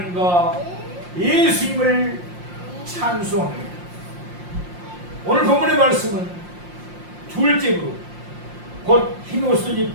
예수님을 찬송합니다. 오늘 본문의 말씀은 둘째 부류, 곧 흰 옷을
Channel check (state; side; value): late; left; 5.7 ms